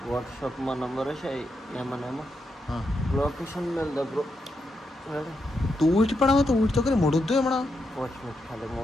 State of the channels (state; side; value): normal; both; correlation 0.83